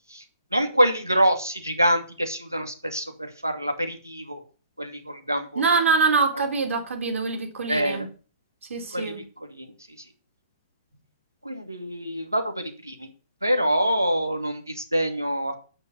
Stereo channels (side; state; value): both; inverted; correlation -0.67